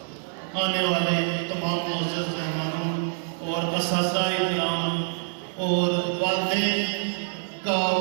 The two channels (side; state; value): left; silent; 61 dB below the other